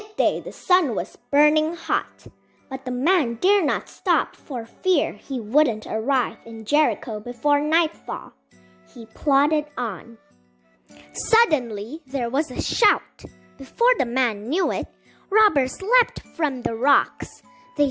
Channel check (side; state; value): both; identical; correlation 1.00